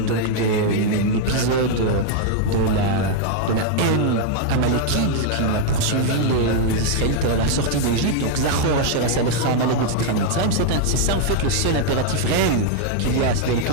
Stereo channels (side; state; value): both; different; correlation 0.00